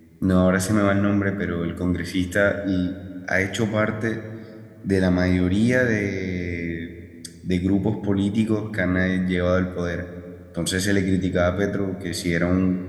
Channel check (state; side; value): identical; both; correlation 1.00